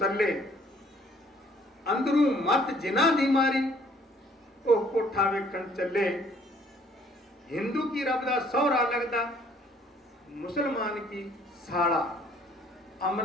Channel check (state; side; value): normal; both; correlation 0.60